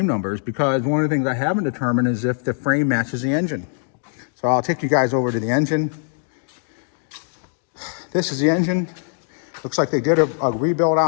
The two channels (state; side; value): silent; right; 56 dB below the other